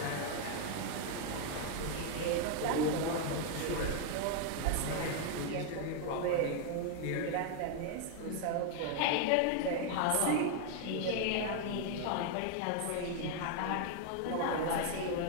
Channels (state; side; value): different; both; correlation 0.00